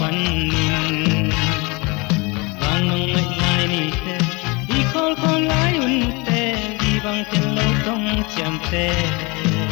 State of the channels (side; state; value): right; quieter; 27.1 dB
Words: phần vang nong lại ni te đi khol lại un te đi bang ten lâu đông chạm te